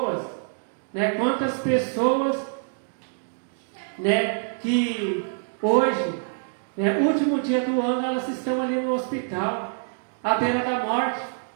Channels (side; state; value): left; silent; digital silence